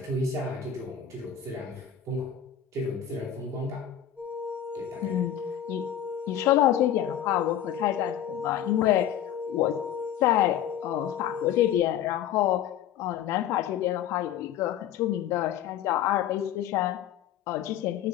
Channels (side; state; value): right; quieter; 10.1 dB